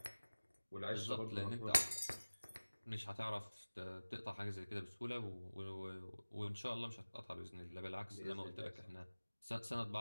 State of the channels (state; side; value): inverted; both; correlation -1.00